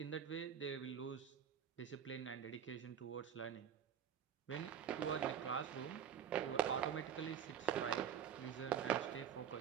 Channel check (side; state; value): left; quieter; 8.5 dB